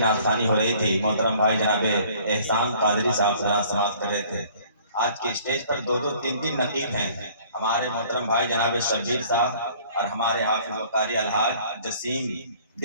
हो रही थी। मोहतरम भाई जनाबे एहसान कादरी साहब जरा समाप्त कर रहे थे। आज के स्टेज पर दो दो तीन तीन नकीब हैं। हमारे मोहतरम भाई जनाबे शब्बीर साहब और हमारे हाफिज वकारी अलहाज जसीम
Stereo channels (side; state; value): both; inverted; correlation -0.54